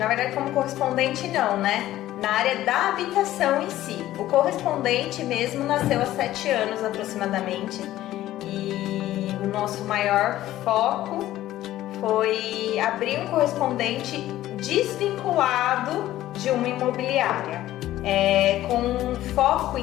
verdade, como correspondente não, né? Na área da habitação em si. O correspondente mesmo nasceu há 7 anos aproximadamente. E o nosso maior foco foi abrir um correspondente desvinculado de uma imobiliária, com foco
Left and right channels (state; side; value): quieter; right; 14.3 dB